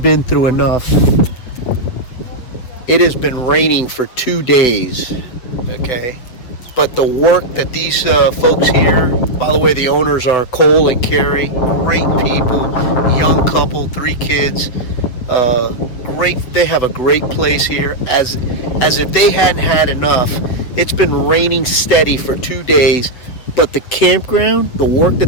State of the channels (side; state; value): right; late; 8.0 ms